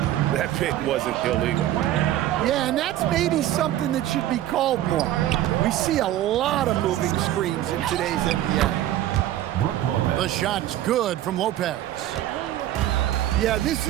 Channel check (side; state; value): left; quieter; 13.2 dB